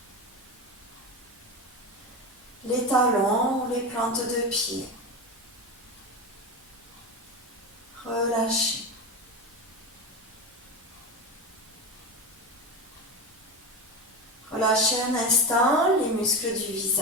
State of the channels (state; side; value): normal; both; correlation 0.20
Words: Les talons ou les plantes de pied. Relâchez. Relâchez un instant les muscles du